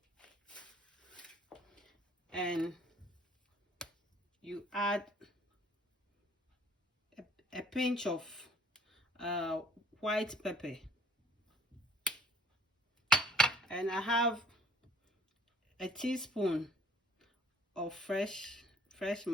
and you add a pinch of white pepper, and I have a teaspoon of fresh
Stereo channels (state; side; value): normal; both; correlation 0.56